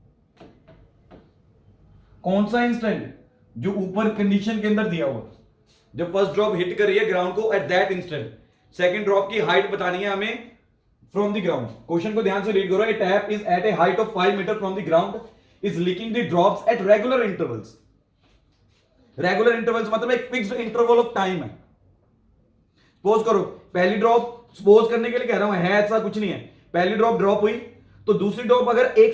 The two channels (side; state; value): both; identical; correlation 1.00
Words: कौन सा इंस्टेंट? जो ऊपर कंडीशन के अंदर दिया हुआ, जब फर्स्ट ड्रॉप हिट कर रही है ग्राउंड को at that instant, second drop की हाइट बतानी है हमें फ्रॉम द ग्राउंड। क्वेश्चन को ध्यान से रीड करो। A tap is at a height of 5 metre from the ground is leaking the drops at regular intervals. Regular intervals मतलब एक फिक्स्ड इंटरवल ऑफ टाइम है। सपोज करो पहली ड्रॉप, सपोज करने के लिए कह रहा हूं, है ऐसा कुछ नहीं है, पहली ड्रॉप ड्रॉप हुई तो दूसरी ड्रॉप अगर